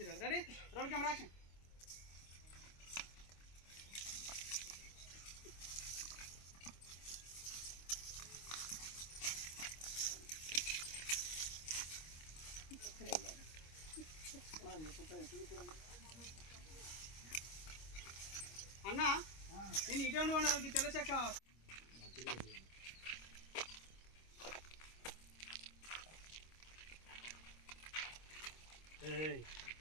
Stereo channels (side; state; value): right; late; 25 ms